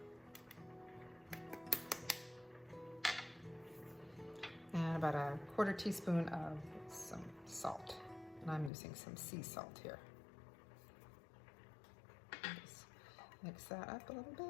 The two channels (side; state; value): right; drops out; at 8.7 s